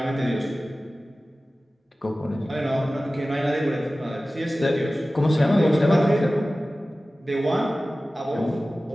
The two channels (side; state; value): both; normal; correlation 0.96